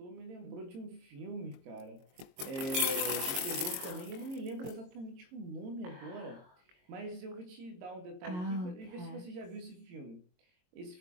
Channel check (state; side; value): late; left; 22 ms